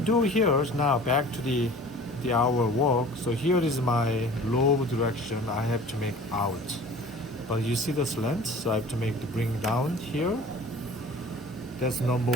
here is now back to the our work. So here is my lobe direction. I have to make out, but you see the slant, so I have to make the bring down here. That's number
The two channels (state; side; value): normal; both; correlation 0.45